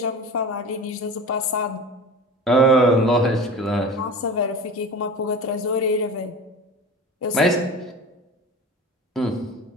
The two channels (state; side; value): normal; both; correlation 0.33